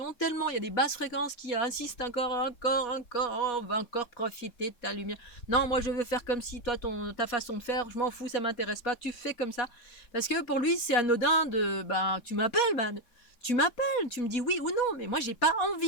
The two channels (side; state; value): right; late; 4.2 ms